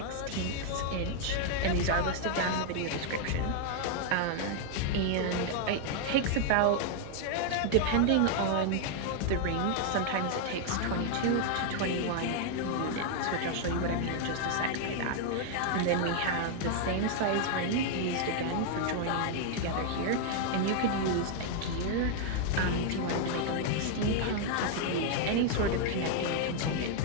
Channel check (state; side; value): different; both; correlation 0.00